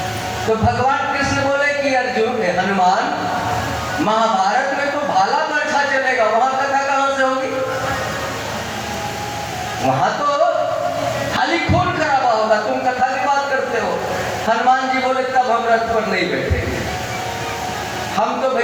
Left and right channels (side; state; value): both; identical; correlation 1.00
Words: तो भगवान कृष्ण बोले कि अर्जुन हनुमान महाभारत में तो भाला बरछा चलेगा, वहां कथा कहां से होगी? वहां तो खाली खून खराबा होगा, तुम कथा की बात करते हो। हनुमान जी बोले तब हम रथ पर नहीं बैठेंगे, हम तो